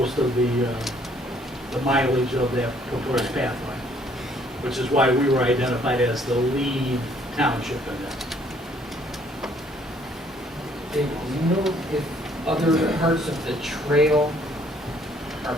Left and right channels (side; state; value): both; normal; correlation 0.62